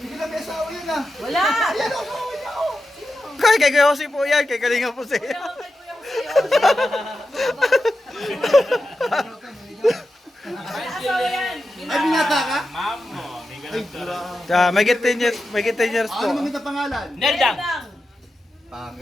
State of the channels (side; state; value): both; normal; correlation 0.90